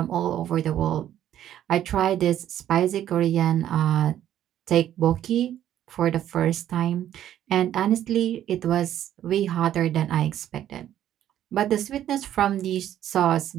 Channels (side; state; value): left; quieter; 11.4 dB